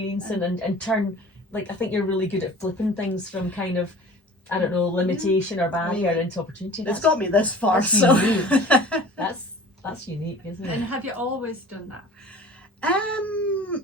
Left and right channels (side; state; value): both; normal; correlation 0.43